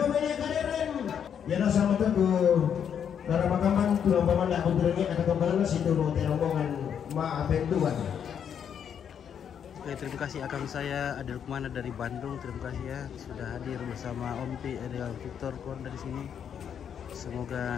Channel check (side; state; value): right; quieter; 8.2 dB